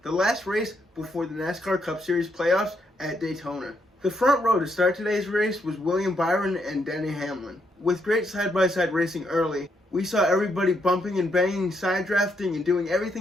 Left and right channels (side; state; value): both; normal; correlation 0.77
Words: the last race before the NASCAR Cup Series playoffs at Daytona. The front row to start today's race was William Byron and Denny Hamlin. With great side-by-side racing early, we saw everybody bumping and banging, side drafting, and doing